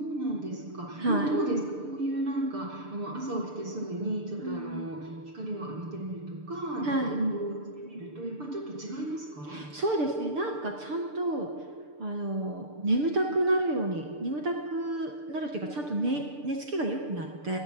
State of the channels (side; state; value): left; late; 6.8 ms